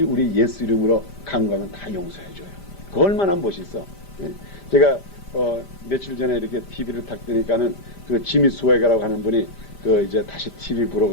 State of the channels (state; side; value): late; right; 5.0 ms